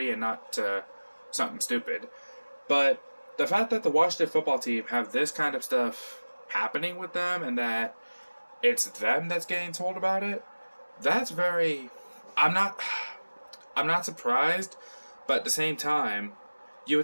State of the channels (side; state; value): both; inverted; correlation -1.00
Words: and not to something stupid. But the fact that the Washington football team have this kind of stuff happening with them, and that it's them that's getting told about it, that's very... I'm not surprised, but at the same time, you